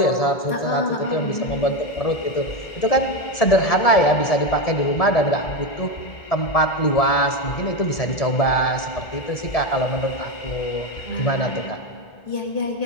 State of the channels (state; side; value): late; right; 1.7 ms